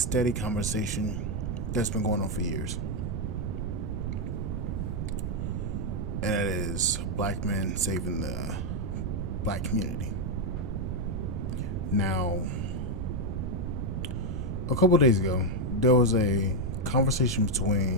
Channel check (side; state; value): right; noise; rumble, 1 dB below the sound